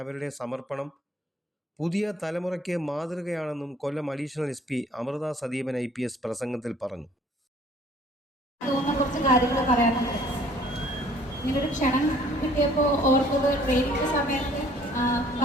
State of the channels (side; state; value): both; normal; correlation 0.57